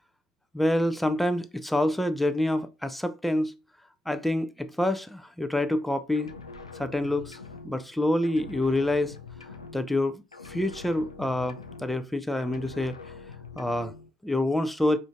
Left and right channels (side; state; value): both; normal; correlation 0.88